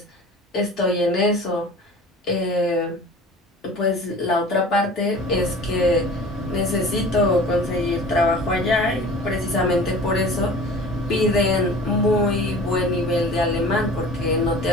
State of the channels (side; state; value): both; normal; correlation 0.41